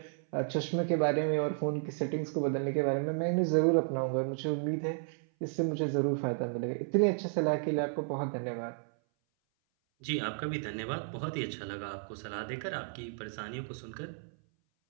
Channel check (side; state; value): left; silent; 56 dB below the other